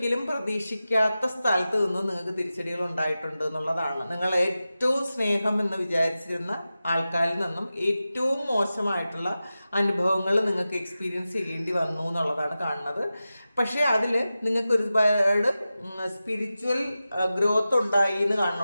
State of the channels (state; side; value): inverted; both; correlation -0.94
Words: പ്രതീക്ഷിക്കാത്ത സ്ഥലത്ത് നിന്ന് നിങ്ങൾക്ക് തിരിച്ചടികൾ ഉണ്ടായിട്ടുണ്ട് എന്നുള്ളതാണ്. നിങ്ങൾ ഏറ്റവും സ്നേഹം എന്ന് വിചാരിച്ചിരുന്ന ആൾക്കാരിൽ നിന്നും ഏറ്റവും മോശമായിട്ടുള്ള അനുഭവങ്ങൾ നിങ്ങൾക്ക് എക്സ്പീരിയൻസ് ചെയ്യേണ്ടി വന്നു എന്നുള്ളതാണ് കാണുന്നത്. പക്ഷേ അതിൽ നിങ്ങൾക്ക് ഒരുപാട് സ്പിരിച്വൽ ഗ്രോത്ത് ഉണ്ടായി എന്ന്